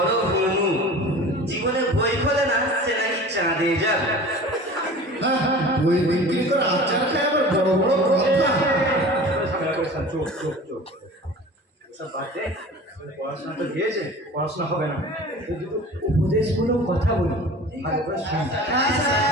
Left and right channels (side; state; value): both; normal; correlation 0.40